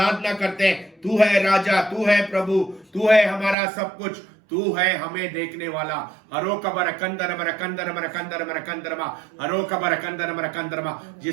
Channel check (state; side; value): drops out; left; at 3.6 s